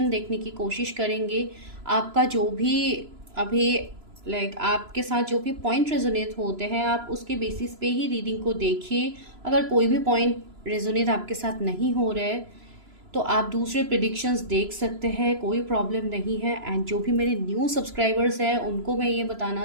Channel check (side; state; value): left; late; 3.0 ms